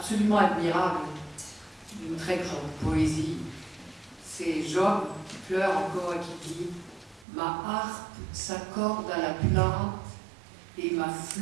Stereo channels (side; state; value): left; drops out; at 7.2 s